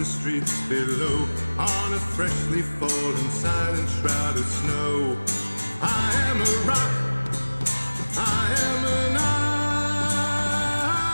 streets below on a freshly fallen silent shroud of snow. I am a rock, I am an island.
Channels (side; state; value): both; inverted; correlation -1.00